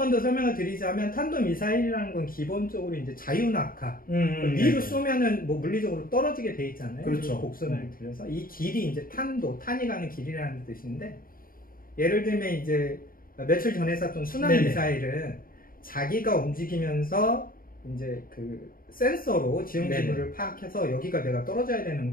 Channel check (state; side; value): late; right; 0.41 ms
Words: 더 설명을 드리자면 탄도미사일이라는 건 기본적으로 이제 자유낙하 위로 쏘면은 물리적으로 떨어지게 돼 있잖아요. 그렇죠. 곡선을 들여서 이 길이 이제 탄이 가는 길이라는 뜻인데 예를 들면 이제 며칠 전에 쐈던 순항미사일은 자기가 움직이면서 이제 그 센서로 지형 지물을 파악해서 여기가 내가 떨어져야 되는